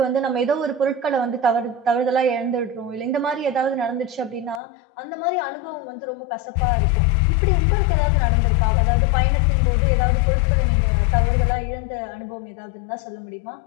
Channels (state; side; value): drops out; right; at 4.6 s